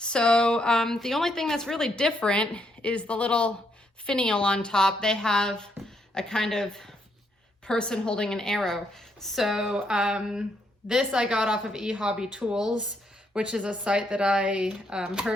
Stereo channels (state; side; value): normal; both; correlation 0.75